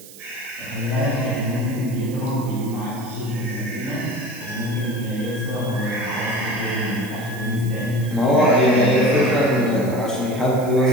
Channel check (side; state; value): right; noise; hiss, 18 dB below the sound